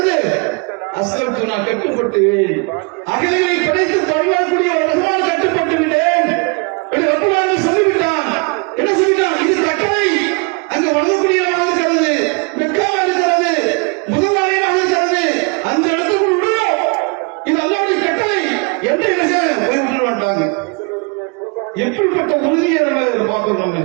அஸ்லம்து நான் கட்டுப்பட்டு அகிலங்களை படைத்து பரிமாறக்கூடிய ரஹ்மான் கட்டுப்பட்டு விட்டேன் என்று ரப்புல் ஆலமீன் சொல்லிவிட்டான். என்ன சொல்லிட்டான், இது கட்டளை, அங்கு வணங்கக்கூடிய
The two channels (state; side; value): quieter; left; 32.5 dB